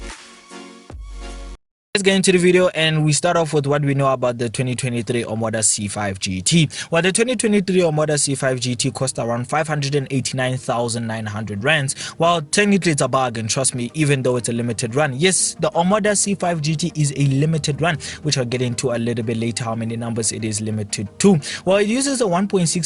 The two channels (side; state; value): both; identical; correlation 1.00